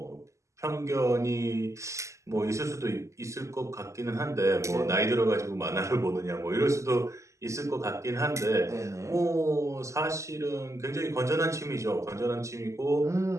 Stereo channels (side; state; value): left; late; 0.15 ms